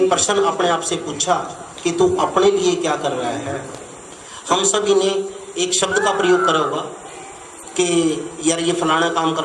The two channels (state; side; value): identical; both; correlation 1.00